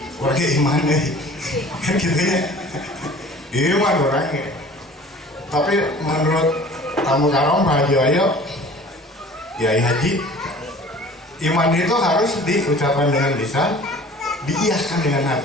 warga iman deh. Kan gitu ya. Iman orangnya. Tapi menurut tamu karom Pak Haji Wayo, Yai Haji, iman itu harus diucapkan dengan lisan, diiyakan dengan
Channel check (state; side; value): normal; both; correlation 0.46